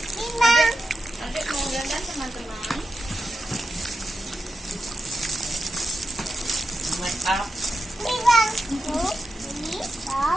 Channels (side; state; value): both; normal; correlation 0.89